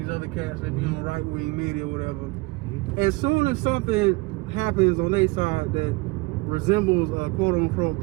other cats that be on right-wing media or whatever. As soon as something happens on their side that resembles a quote-unquote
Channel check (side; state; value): left; quieter; 24.6 dB